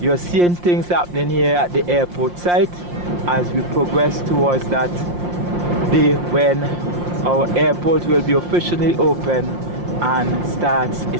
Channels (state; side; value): late; left; 5.7 ms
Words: you're seeing things happening here at the airport site as we progress towards that day when our airport will be officially open and starts